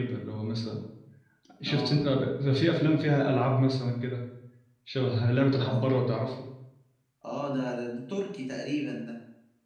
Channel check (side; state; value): both; identical; correlation 1.00